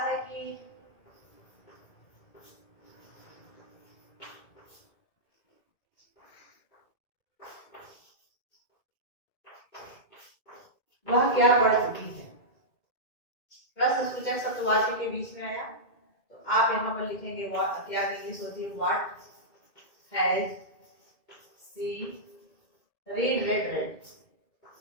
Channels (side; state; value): right; late; 2.2 ms